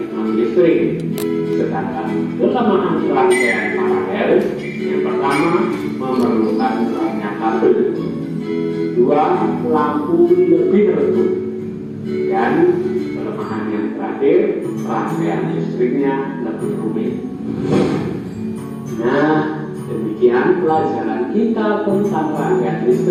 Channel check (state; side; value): identical; both; correlation 1.00